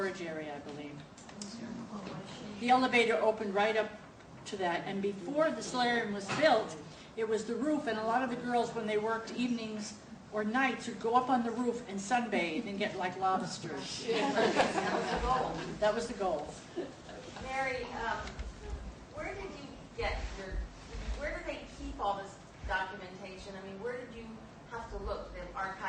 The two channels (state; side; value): identical; both; correlation 1.00